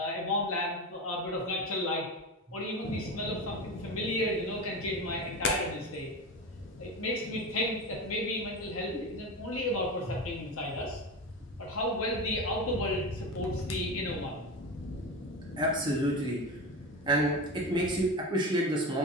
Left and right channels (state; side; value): normal; both; correlation 0.24